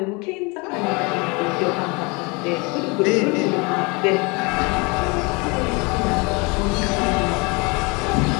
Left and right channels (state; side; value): quieter; right; 28.2 dB